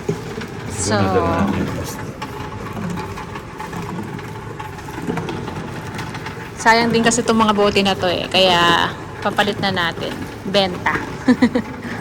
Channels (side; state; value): both; identical; correlation 1.00